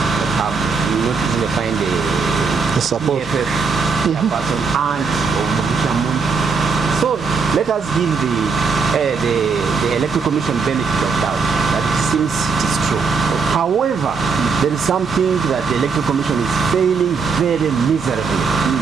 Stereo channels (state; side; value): quieter; left; 5.1 dB